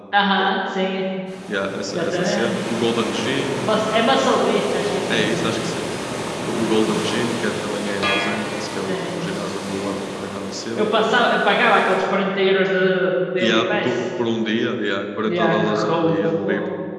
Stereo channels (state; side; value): identical; both; correlation 1.00